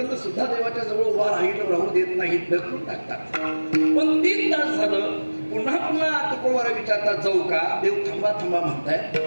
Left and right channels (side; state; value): both; inverted; correlation -1.00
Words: सुद्धा देवाच्या जवळ उभा राहू देत नाहीत, ढकलून टाकतात. पण 3 तास झालं, पुन्हा पुन्हा तुकोबारा विचारतात, जाऊ का? देव थांबा थांबा म्हणताय.